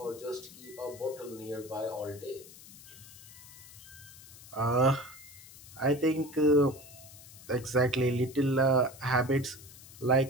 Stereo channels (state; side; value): noise; left; hiss, 18 dB below the sound